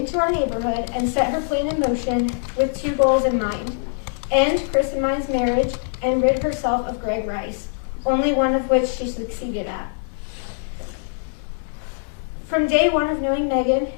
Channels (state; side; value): silent; right; digital silence